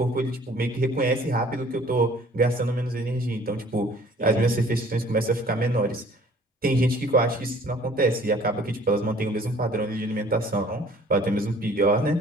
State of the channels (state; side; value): normal; both; correlation 0.54